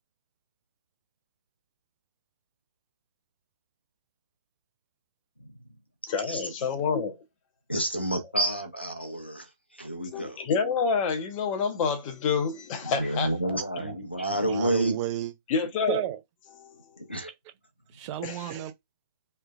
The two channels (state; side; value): inverted; both; correlation -0.41